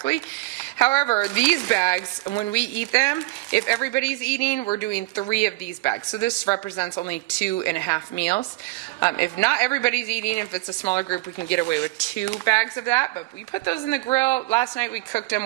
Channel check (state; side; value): quieter; left; 21.5 dB